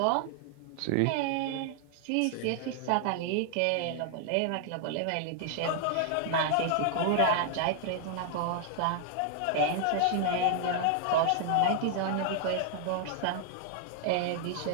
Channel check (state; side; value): different; both; correlation 0.00